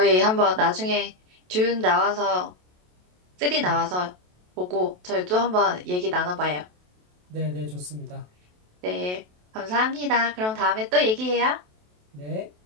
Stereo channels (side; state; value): left; late; 27 ms